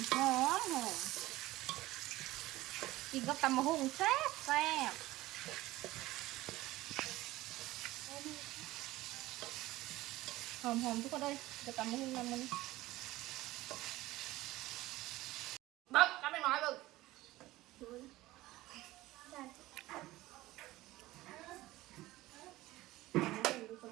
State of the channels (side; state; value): left; quieter; 17.7 dB